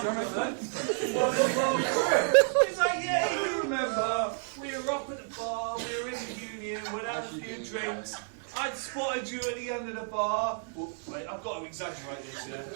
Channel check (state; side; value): silent; left; digital silence